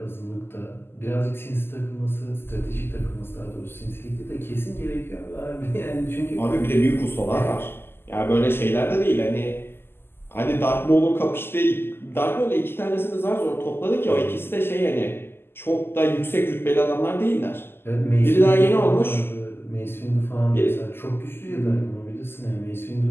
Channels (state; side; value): late; right; 0.11 ms